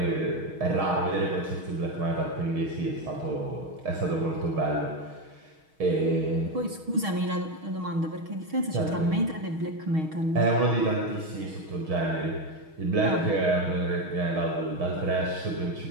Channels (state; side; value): late; left; 6.4 ms